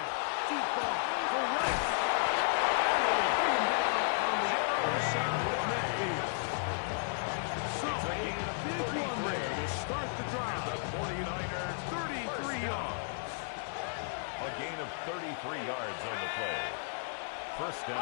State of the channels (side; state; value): right; silent; digital silence